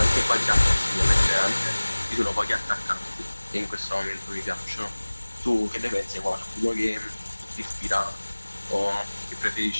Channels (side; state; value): both; inverted; correlation -1.00